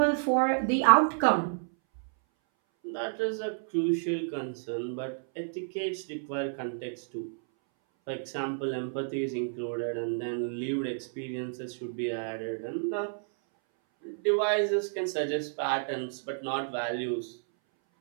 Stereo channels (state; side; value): silent; left; 58 dB below the other